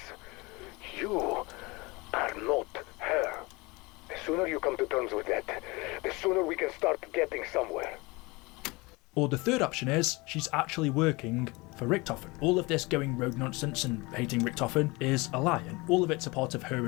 You are not her. The sooner you come to terms with that, the sooner we can start getting somewhere. Or the third option is, she's actually working for Richtofen. All of this going rogue nonsense and hating Richtofen is a lie, and all of it's a part of her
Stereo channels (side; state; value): right; quieter; 24.7 dB